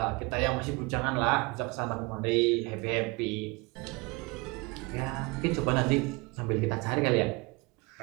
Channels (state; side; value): quieter; left; 26.7 dB